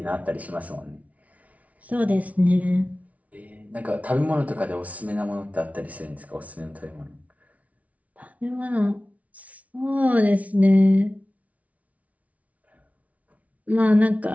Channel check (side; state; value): left; late; 0.068 ms